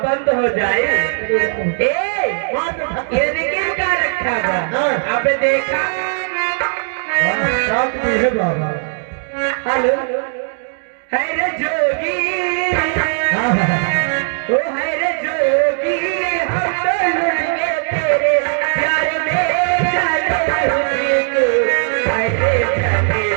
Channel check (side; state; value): left; silent; 58 dB below the other